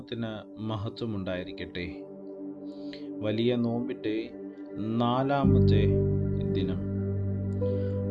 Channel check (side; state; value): both; identical; correlation 1.00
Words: മഹത്വമുണ്ടായിരിക്കട്ടെ. വലിയ നോമ്പിൻ്റെ 4-ാമത്തെ ദിനം,